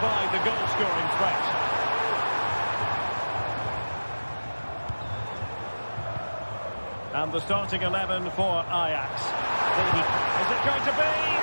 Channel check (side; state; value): both; inverted; correlation -1.00